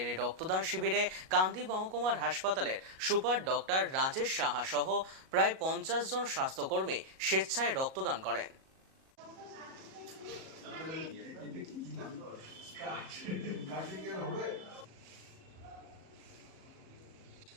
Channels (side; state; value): left; late; 37 ms